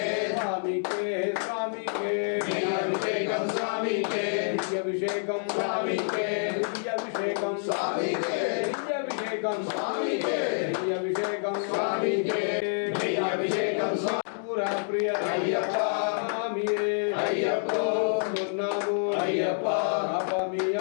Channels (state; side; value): silent; right; digital silence